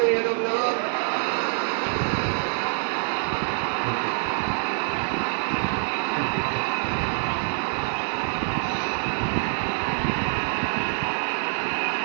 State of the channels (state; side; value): silent; left; 58 dB below the other